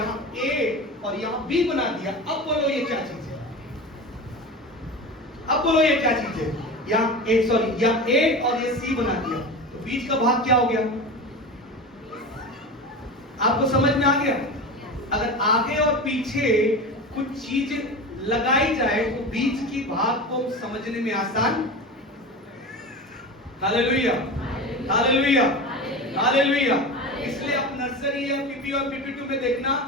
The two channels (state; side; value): normal; both; correlation 0.28